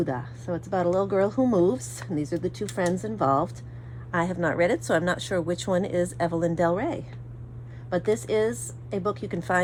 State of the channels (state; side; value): identical; both; correlation 1.00